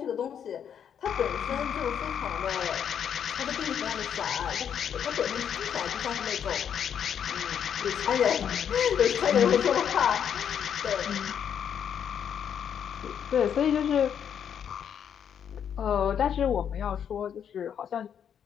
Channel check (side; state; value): right; quieter; 8.4 dB